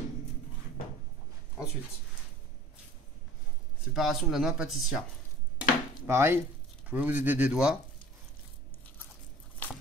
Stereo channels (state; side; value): normal; both; correlation 0.45